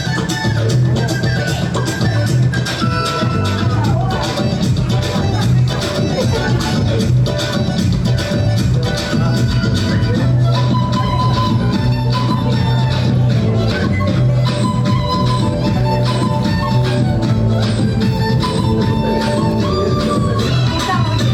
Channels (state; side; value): identical; both; correlation 1.00